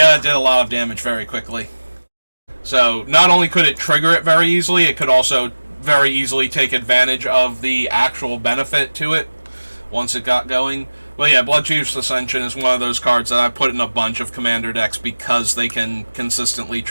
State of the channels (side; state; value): both; inverted; correlation -1.00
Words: did a lot of damage very quickly. So not only could it trigger it very easily, it could also very easily take advantage of the actual benefit to it once it got going. But yeah, Blood Chief's Ascension is one of those cards that I put in a bunch of commander decks because they can consistently